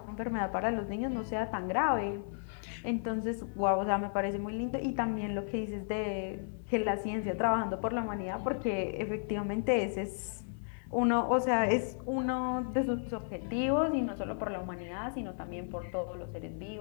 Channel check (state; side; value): silent; right; 55 dB below the other